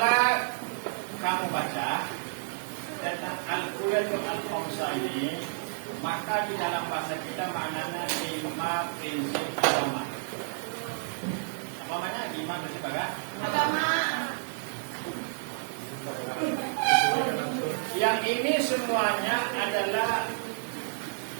kamu baca tentang Al-Quranul Al-Khamsah ini, maka di dalam bahasa kita maknanya 5 prinsip agama. Apa maknanya 5 prinsip agama? Yang ini semuanya adalah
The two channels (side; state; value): left; silent; 58 dB below the other